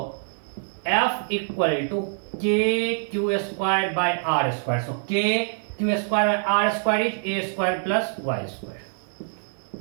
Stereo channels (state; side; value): silent; left; 57 dB below the other